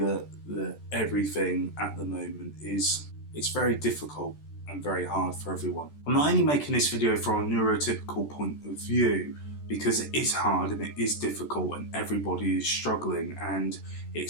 everything at the moment it's very difficult and very hard for everyone. I'm not only making this video from a neurotypical point of view because it is hard and it is difficult and everybody is struggling, and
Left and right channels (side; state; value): right; late; 14 ms